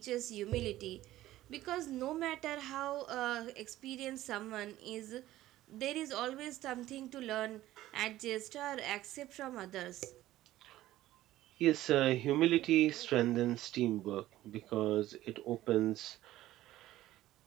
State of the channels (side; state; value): left; quieter; 15.0 dB